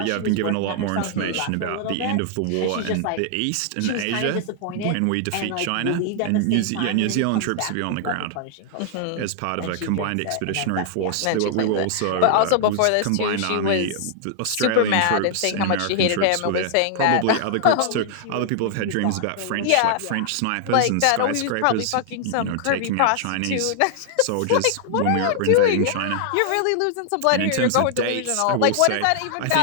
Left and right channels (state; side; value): different; both; correlation 0.00